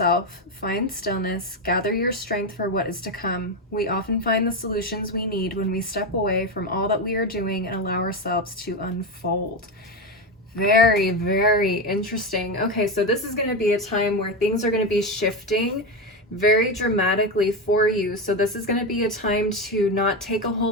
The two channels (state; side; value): normal; both; correlation 0.14